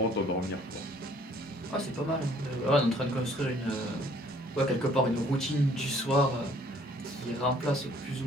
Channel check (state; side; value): normal; both; correlation 0.59